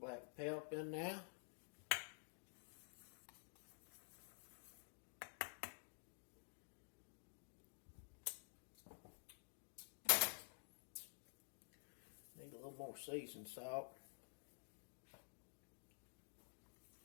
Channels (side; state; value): right; silent; digital silence